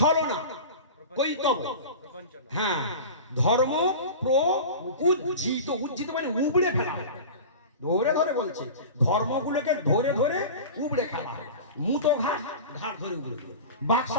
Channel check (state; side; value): inverted; both; correlation -0.33